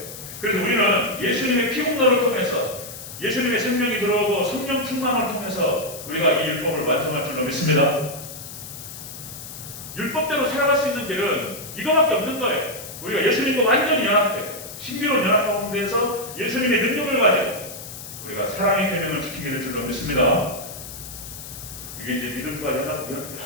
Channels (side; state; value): left; noise; hiss, 12 dB below the sound